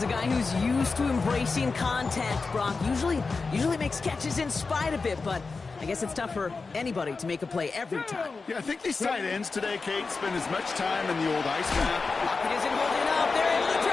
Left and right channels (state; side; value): quieter; right; 4.3 dB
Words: a guy who's used to embracing contact, Brock. Usually makes catches in spite of it, but I guess it's tough for anybody to make a play every time. Yeah, I think these tight ends today, Kate, spend as much time in the old ice map. Pocket isn't holding up. They're able to